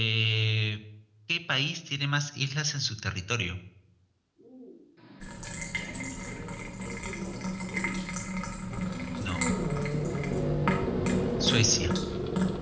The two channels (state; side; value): identical; both; correlation 1.00